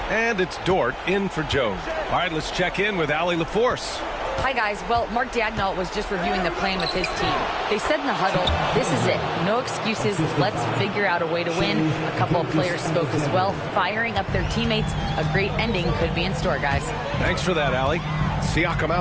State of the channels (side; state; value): both; identical; correlation 1.00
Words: And it's Dort in for Joe. All right, let's check in with Allie LaForce. Hi, guys. Well, Mark Daigneault was just reviewing the plan with his team. They said in the huddle, this is it. No excuses. Let's figure out a way to win. A couple of players spoke as well, firing up their teammates. A great ending could be in store, guys. Thanks for that, Allie. Siakam